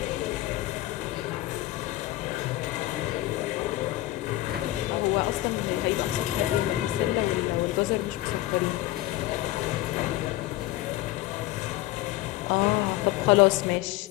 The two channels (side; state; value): right; quieter; 16.6 dB